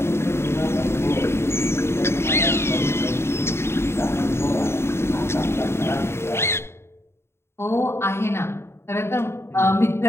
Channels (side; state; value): right; late; 0.12 ms